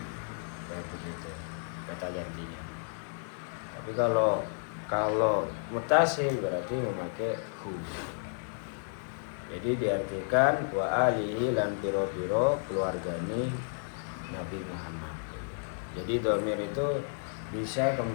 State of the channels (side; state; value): right; silent; 56 dB below the other